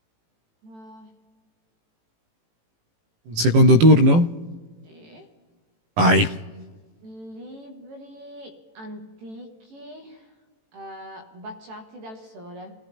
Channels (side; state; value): left; late; 18 ms